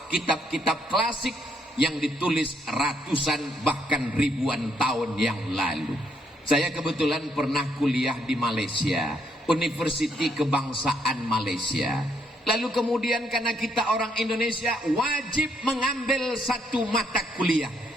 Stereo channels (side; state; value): both; normal; correlation 0.72